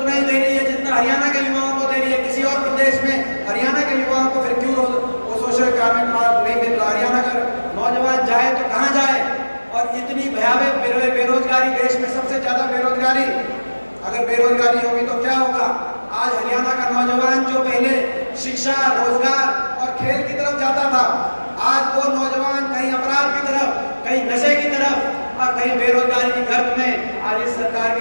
ही दे रही है जितना हरियाणा के युवाओं को दे रही है। किसी और प्रदेश में हरियाणा के युवाओं को फिर क्यों वो सोशो इकोनॉमिक मार्ग नहीं मिल रहा? हरियाणा का नौजवान जाए तो कहाँ जाए? और इतनी भयावह बेरोजगारी, देश में सबसे ज्यादा बेरोजगारी, अगर बेरोजगारी होगी तो क्या होगा? आज हरियाणा का नौजवान जो पहले शिक्षा, रोजगार और खेल की तरफ जाता था, आज वो नौजवान कहीं अपराध की तरफ, कहीं नशे की तरफ और कहीं बेरोजगारी की गर्त में आज इस सरकार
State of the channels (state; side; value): inverted; both; correlation -1.00